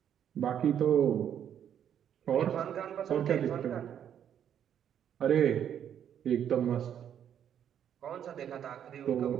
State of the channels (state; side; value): quieter; left; 9.3 dB